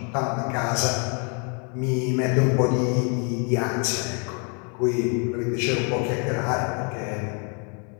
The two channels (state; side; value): quieter; right; 37.4 dB